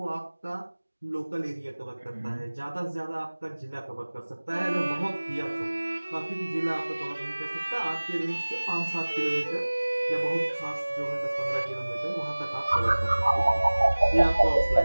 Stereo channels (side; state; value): both; inverted; correlation -1.00